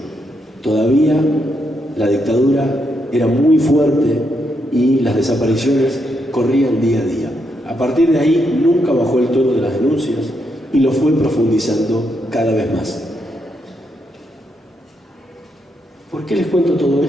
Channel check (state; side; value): normal; both; correlation 0.80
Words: Todavía la dictadura era muy fuerte y las desapariciones corrían día a día. A partir de ahí nunca bajó el tono de las denuncias y lo fue profundizando cada vez más. ¿Por qué les cuento todo